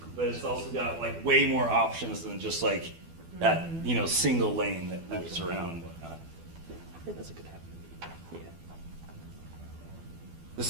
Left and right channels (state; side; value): late; left; 12 ms